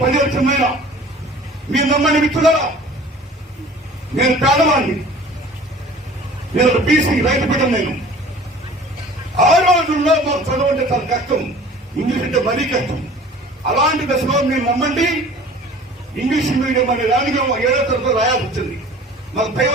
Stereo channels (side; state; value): both; normal; correlation 0.46